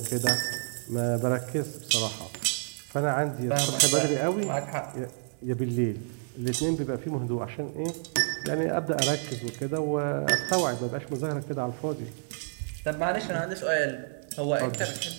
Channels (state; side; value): silent; left; 57 dB below the other